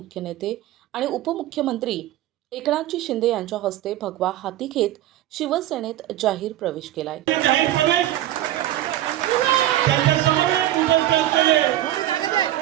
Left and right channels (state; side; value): quieter; left; 13.8 dB